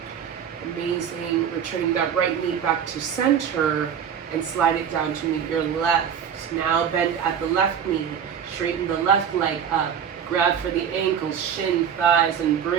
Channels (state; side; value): quieter; left; 8.1 dB